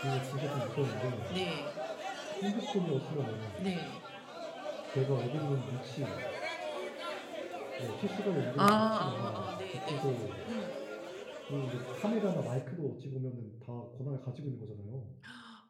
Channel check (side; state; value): both; identical; correlation 1.00